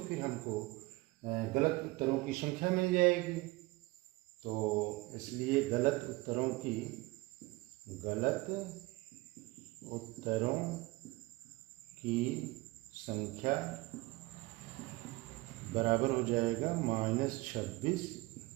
फिर हमको गलत उत्तरों की संख्या मिल जाएगी। तो इसलिए गलत उत्तरों की संख्या बराबर हो जाएगा -26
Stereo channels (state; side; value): quieter; left; 21.5 dB